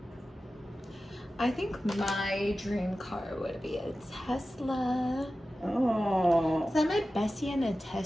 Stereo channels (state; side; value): normal; both; correlation 0.94